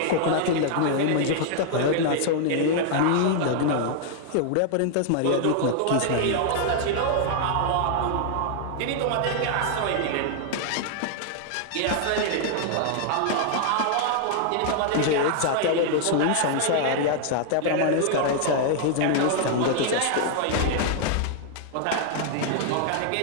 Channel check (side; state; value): both; different; correlation 0.00